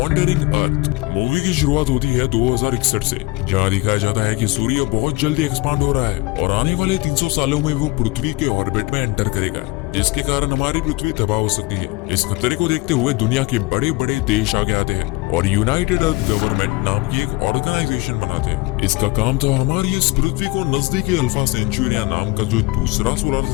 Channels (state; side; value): quieter; right; 22.5 dB